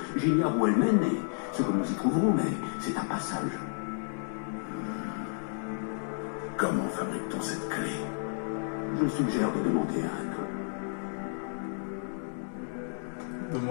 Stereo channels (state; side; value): silent; right; digital silence